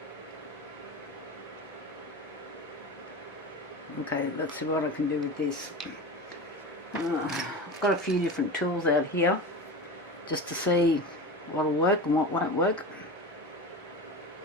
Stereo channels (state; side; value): normal; both; correlation 0.28